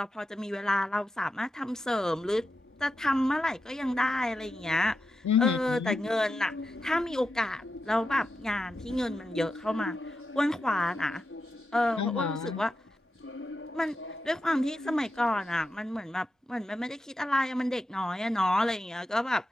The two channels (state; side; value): normal; both; correlation 0.88